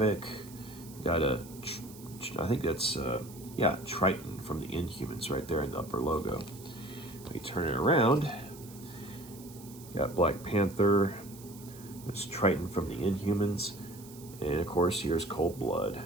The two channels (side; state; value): right; noise; hiss, 19 dB below the sound